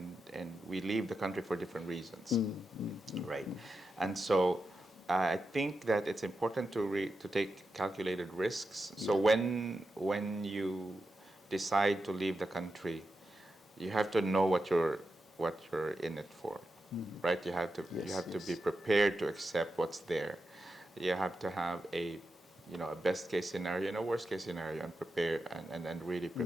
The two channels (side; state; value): both; normal; correlation 0.89